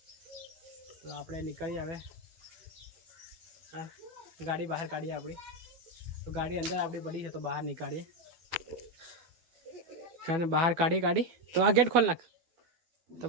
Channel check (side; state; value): left; late; 12 ms